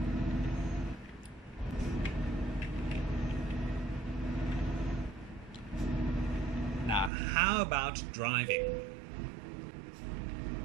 Now, how about driving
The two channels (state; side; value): drops out; left; at 7.1 s